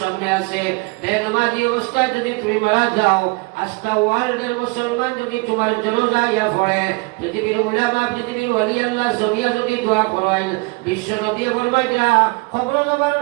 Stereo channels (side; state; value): left; quieter; 27.2 dB